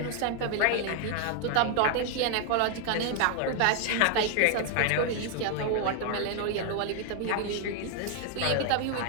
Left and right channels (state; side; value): different; both; correlation 0.00